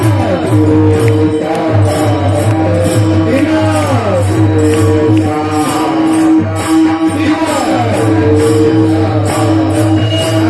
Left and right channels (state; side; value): identical; both; correlation 1.00